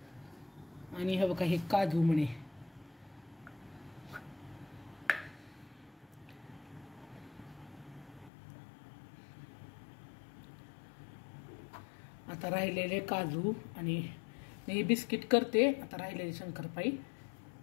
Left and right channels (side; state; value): right; drops out; at 8.3 s